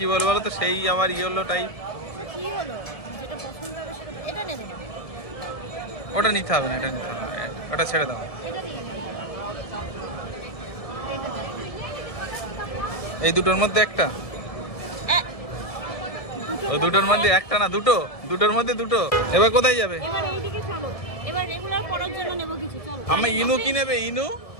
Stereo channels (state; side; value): late; right; 1.7 ms